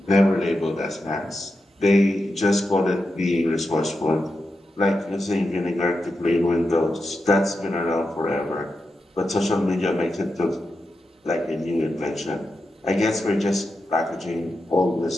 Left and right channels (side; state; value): both; normal; correlation 0.88